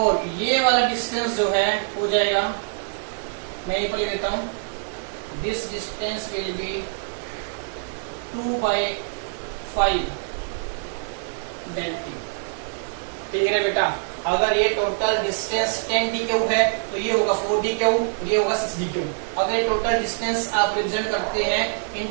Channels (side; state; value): left; silent; digital silence